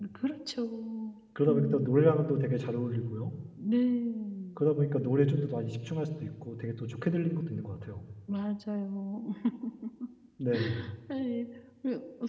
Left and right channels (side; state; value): both; identical; correlation 1.00